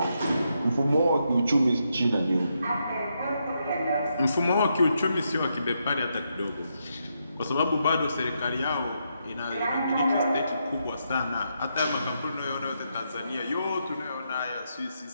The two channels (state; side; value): inverted; both; correlation -0.81